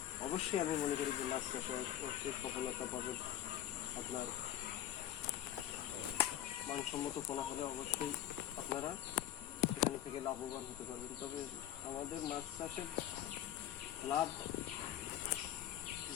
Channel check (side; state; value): right; quieter; 12.0 dB